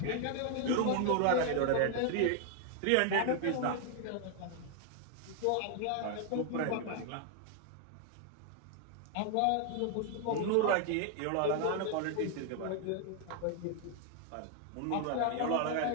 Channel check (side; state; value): both; different; correlation 0.00